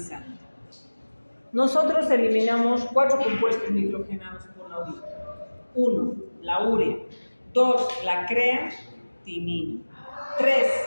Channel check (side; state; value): both; inverted; correlation -1.00